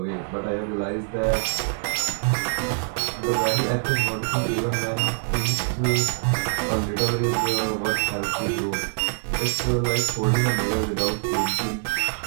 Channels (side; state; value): left; silent; digital silence